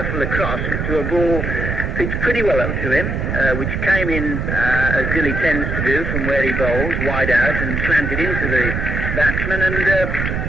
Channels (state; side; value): noise; right; rumble, 2 dB below the sound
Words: across to a ball pitched pretty well up to him, which came in, as Dilley tends to do, from where he bowls, wide out, and slanted into the batsman and